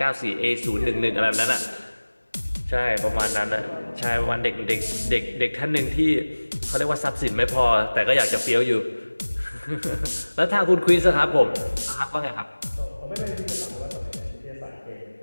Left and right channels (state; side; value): inverted; both; correlation -1.00